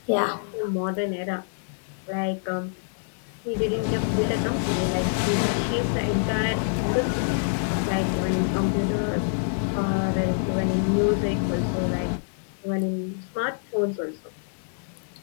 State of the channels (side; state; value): right; silent; digital silence